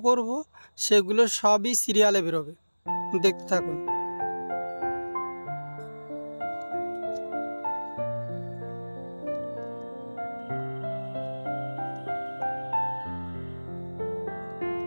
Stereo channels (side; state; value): both; inverted; correlation -1.00